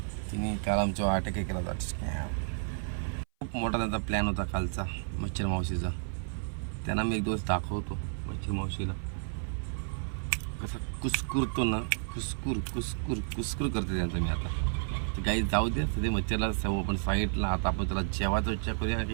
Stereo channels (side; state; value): left; silent; 56 dB below the other